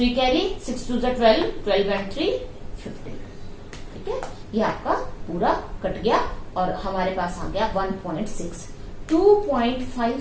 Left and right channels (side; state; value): both; identical; correlation 1.00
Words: कैरी, 6 2 जा 12, 12 एंड 3 15, ठीक है। ये आपका पूरा कट गया और हमारे पास आ गया 1.6।